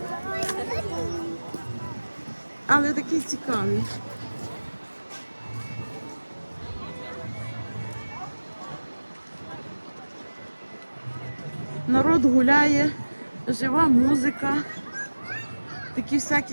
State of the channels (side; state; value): both; inverted; correlation -1.00